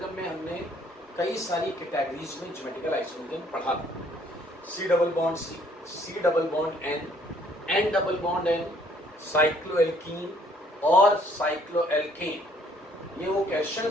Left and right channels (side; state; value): both; normal; correlation 0.63